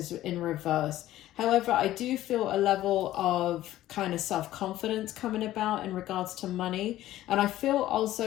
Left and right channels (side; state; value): right; quieter; 14.3 dB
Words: in reverse. However, I do feel a level of kind of self-confidence coming about in regards to money. And I feel